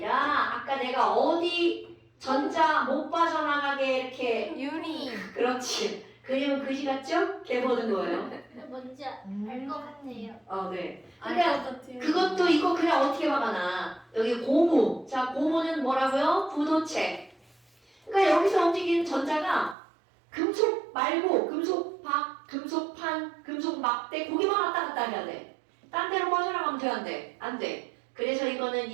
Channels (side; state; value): left; drops out; at 19.8 s